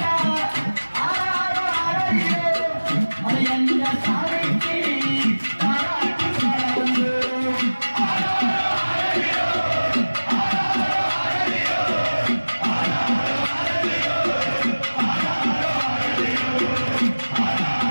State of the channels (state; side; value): inverted; both; correlation -1.00